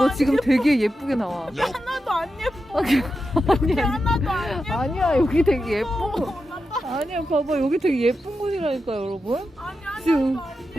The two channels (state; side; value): normal; both; correlation 0.89